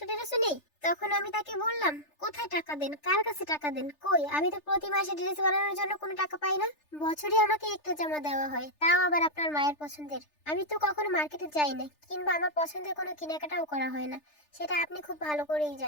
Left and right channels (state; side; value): late; right; 3.3 ms